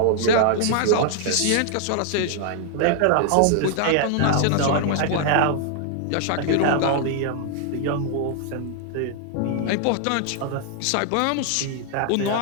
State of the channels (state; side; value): different; both; correlation 0.00